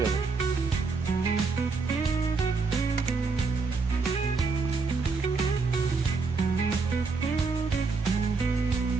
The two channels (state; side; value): quieter; left; 4.5 dB